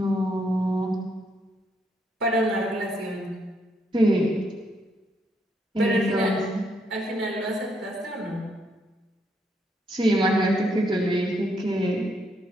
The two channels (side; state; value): both; normal; correlation 0.74